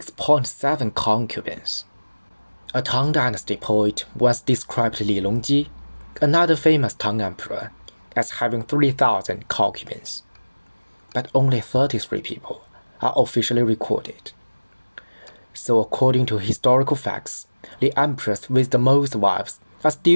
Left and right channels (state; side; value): inverted; both; correlation -1.00